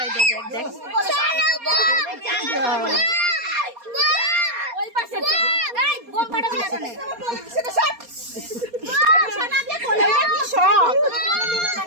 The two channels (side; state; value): left; late; 4.2 ms